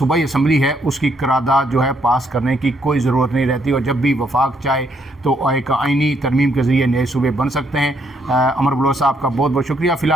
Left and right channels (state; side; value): normal; both; correlation 0.72